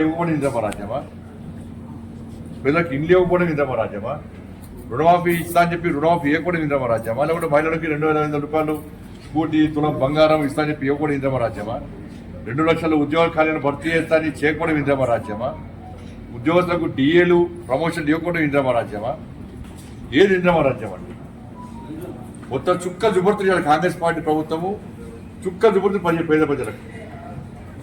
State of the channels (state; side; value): identical; both; correlation 1.00